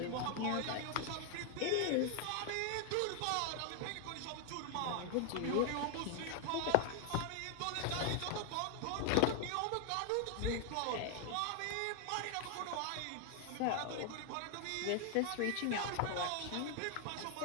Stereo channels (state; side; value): different; both; correlation 0.00